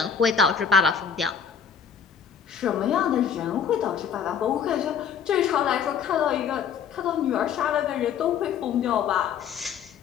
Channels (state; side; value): quieter; right; 7.3 dB